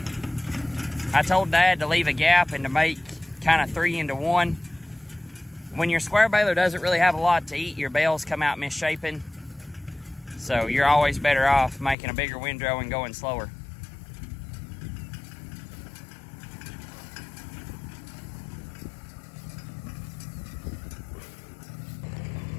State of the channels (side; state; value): right; drops out; at 12.0 s